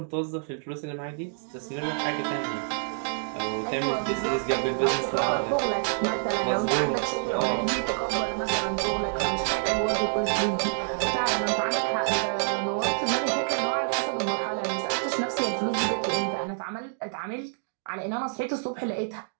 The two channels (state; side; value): silent; left; digital silence